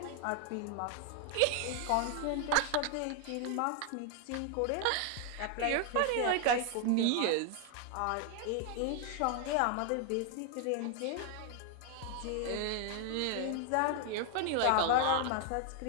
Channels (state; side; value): different; both; correlation 0.00